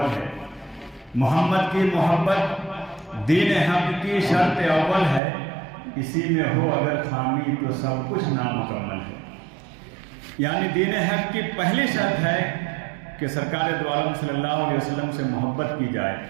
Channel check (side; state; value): left; drops out; at 5.2 s